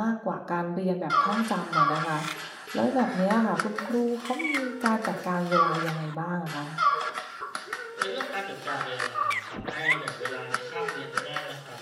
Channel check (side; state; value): both; identical; correlation 1.00